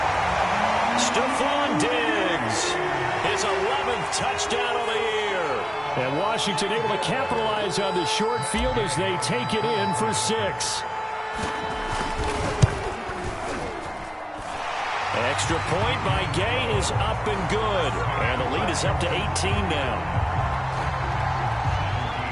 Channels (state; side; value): identical; both; correlation 1.00